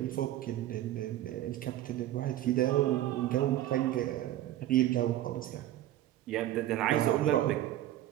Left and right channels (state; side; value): quieter; left; 13.7 dB